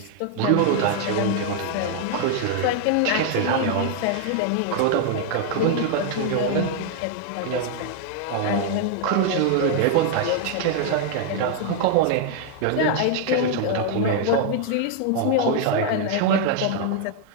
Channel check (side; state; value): both; different; correlation 0.00